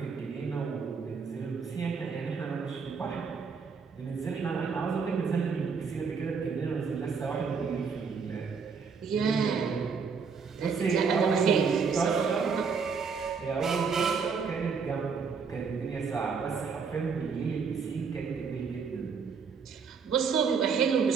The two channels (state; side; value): quieter; left; 5.6 dB